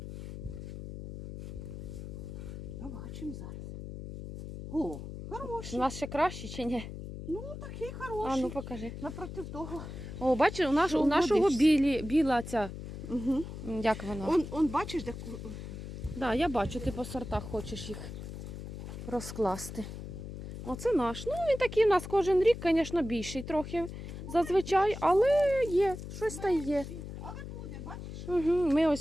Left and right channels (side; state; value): left; noise; hum, 9 dB below the sound